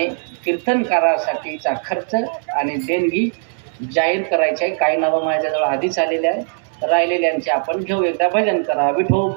कीर्तनकारासाठीचा खर्च आणि देणगी जाहीर करायचे आहे. काही नावं माझ्याजवळ आधीच आलेले आहे, राहिलेल्यांचे आपण घेऊ. एकदा भजन करा.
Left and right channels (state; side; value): silent; left; 66 dB below the other